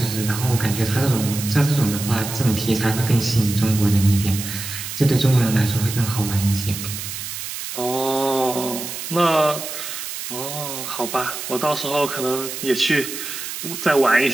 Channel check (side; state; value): right; noise; hiss, 7 dB below the sound